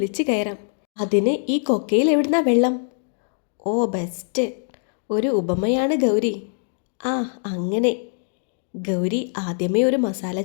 കയറാം. അതിന് ഈ കൊക്കയിൽ എവിടുന്നാ വെള്ളം? ഓ ബെസ്റ്റ്, ഒരു ഉപമയാണ് ഗൗരി. ആ അങ്ങനെ. ഗൗരി ആദ്യമേ ഒരു മസാല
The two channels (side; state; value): right; silent; digital silence